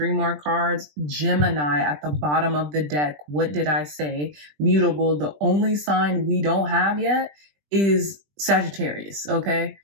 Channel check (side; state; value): left; late; 20 ms